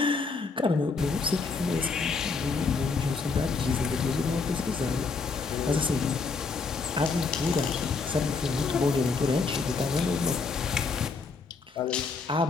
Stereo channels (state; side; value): quieter; right; 4.5 dB